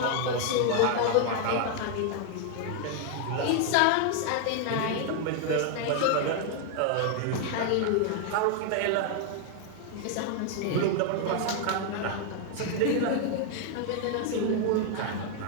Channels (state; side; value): different; both; correlation 0.00